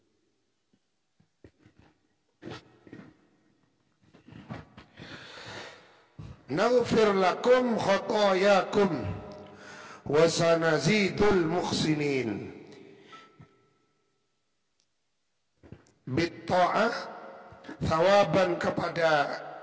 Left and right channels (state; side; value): identical; both; correlation 1.00